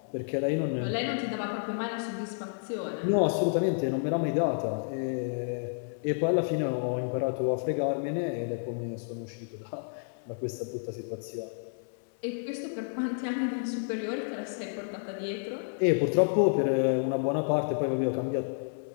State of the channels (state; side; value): silent; right; digital silence